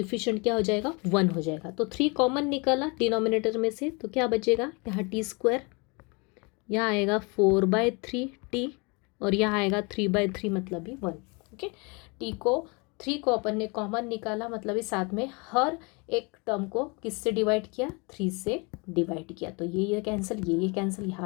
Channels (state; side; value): quieter; right; 29.9 dB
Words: क्या हो जाएगा, 1 हो जाएगा। तो 3 कॉमन निकाला डिनोमिनेटर में से, तो क्या बचेगा, यहाँ t², यहाँ आएगा 4/3t और यहाँ आएगा 3/3, मतलब भी 1। ओके, थ्री को अपन ने कॉमन निकाला, मतलब इस साथ में हर एक टर्म को किससे डिवाइड किया, 3 से डिवाइड किया, तो ये कैंसिल, ये कैंसिल,